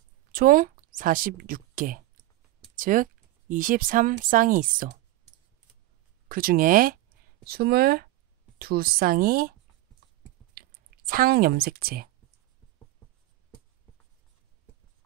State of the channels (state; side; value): quieter; left; 16.5 dB